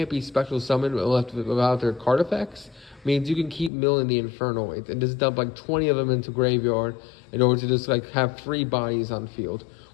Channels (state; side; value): drops out; right; at 3.7 s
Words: be special summoned without their card effects means you can keep milling the Infernoids and just dump like 20 of them into graveyard in order to just like have 3 bodies on field,